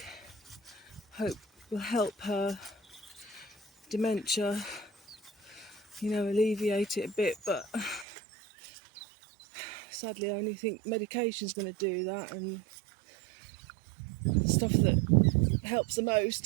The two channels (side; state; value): left; drops out; at 8.1 s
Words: hope will help her dementia, you know, alleviate it a bit. But sadly I only think medication's going to do that, and stuff that helps the